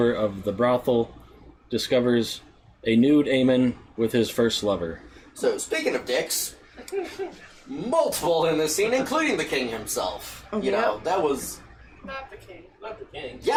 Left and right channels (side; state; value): both; identical; correlation 1.00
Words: of the brothel, discovers a nude Aemon with his first lover. So, speaking of dicks, multiple in this scene, including the king himself. You know, that was... Not the king. Not the king. Yes,